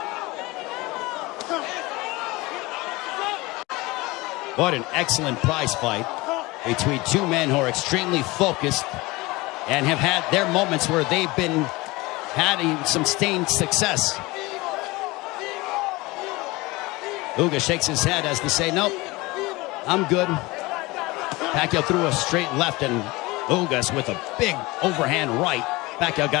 What an excellent prize fight between two men who are extremely focused and have had their moments where they've been having some sustained success. Ugas shakes his head as to say, nope, I'm good. Pacquiao threw a straight left, and Ugas with a big overhand right. Pacquiao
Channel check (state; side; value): quieter; right; 22.2 dB